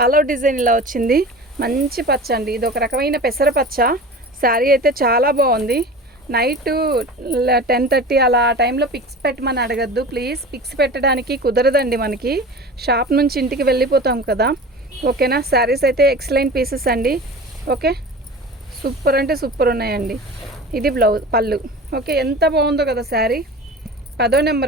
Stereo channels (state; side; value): normal; both; correlation 0.35